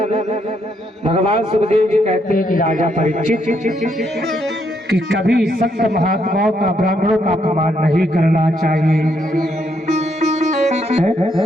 भगवान सुखदेव जी कहते हैं कि राजा परीक्षित कि कभी संत महात्माओं का ब्राह्मणों का अपमान नहीं करना चाहिए।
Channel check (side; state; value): both; normal; correlation 0.75